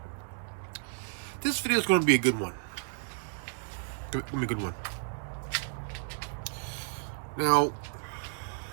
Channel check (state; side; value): silent; left; 56 dB below the other